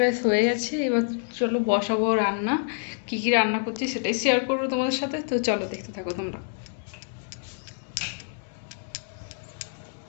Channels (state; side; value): silent; right; digital silence